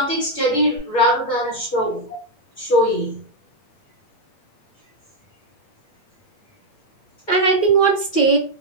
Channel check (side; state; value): right; late; 8.7 ms